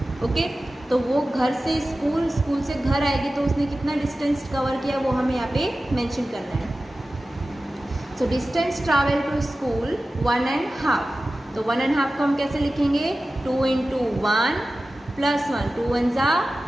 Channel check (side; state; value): both; normal; correlation 0.95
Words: Okay, तो वो घर से स्कूल से घर आएगी तो उसने कितना डिस्टेंस कवर किया वो हमें यहाँ पे मेंशन करना है। So distance travel to school 1.5, तो 1.5 को हम कैसे लिखेंगे 2 × 1 + 1, 2 1 ज़ा